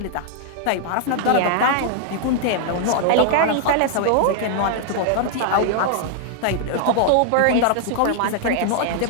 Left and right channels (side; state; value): both; different; correlation 0.00